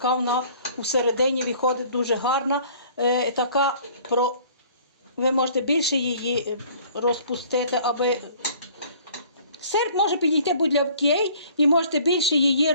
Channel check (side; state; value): both; inverted; correlation -0.53